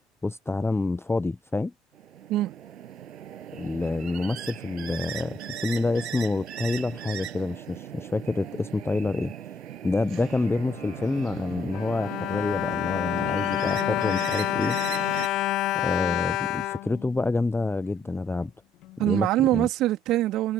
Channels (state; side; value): normal; both; correlation 0.69